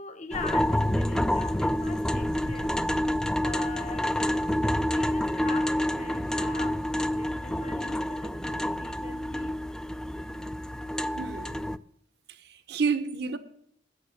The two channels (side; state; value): both; normal; correlation 0.90